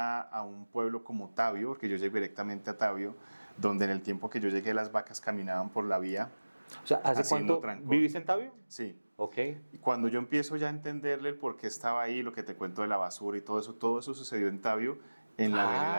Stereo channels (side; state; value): both; inverted; correlation -1.00